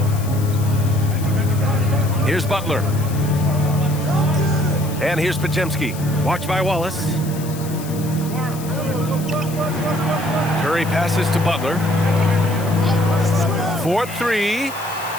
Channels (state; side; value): noise; left; hiss, 15 dB below the sound